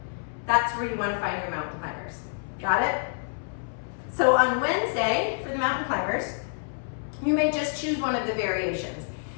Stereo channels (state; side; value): silent; right; 60 dB below the other